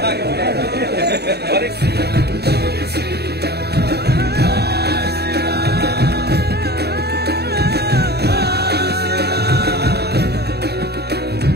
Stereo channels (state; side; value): late; left; 0.47 ms